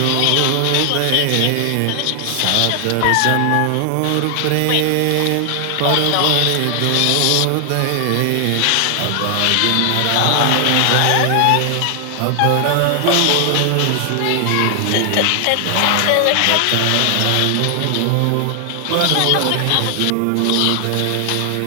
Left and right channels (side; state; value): both; different; correlation 0.00